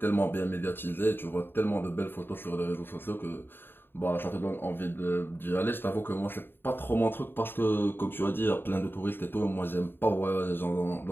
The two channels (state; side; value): late; right; 0.10 ms